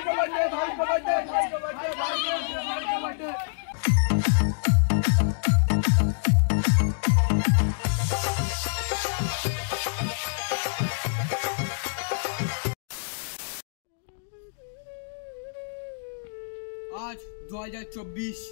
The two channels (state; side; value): silent; right; digital silence